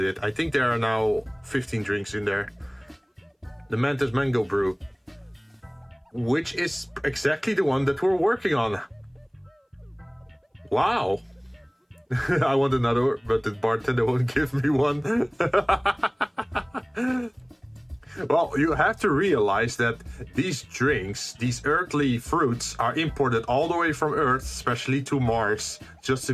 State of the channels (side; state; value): both; identical; correlation 1.00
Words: it. I think there are now 15 drinks in there. The Mantis Mango Brew, which is exactly the one that we're working on. Wow. I want another, but the bartender won't give me one. Well, you have to realize that these drinks, these earthly fruits, are imported all the way from Earth, especially to Mars, just to